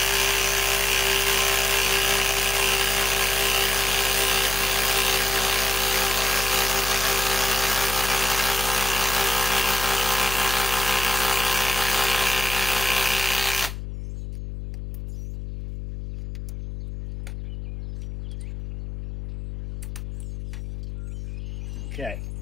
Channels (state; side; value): noise; left; hum, 8 dB below the sound